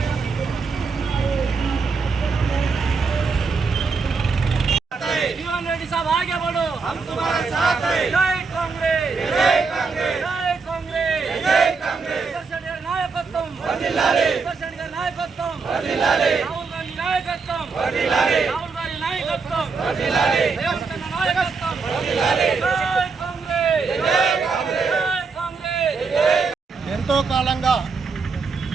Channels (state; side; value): quieter; left; 4.8 dB